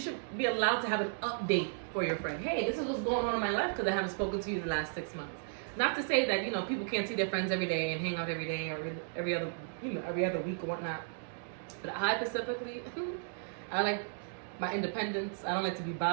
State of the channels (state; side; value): silent; left; digital silence